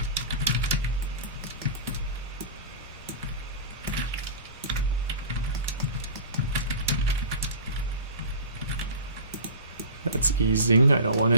easing. I don't want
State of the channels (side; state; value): both; inverted; correlation -0.34